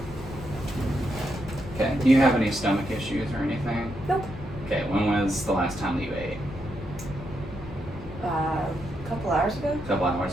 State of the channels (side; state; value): left; noise; rumble, 14 dB below the sound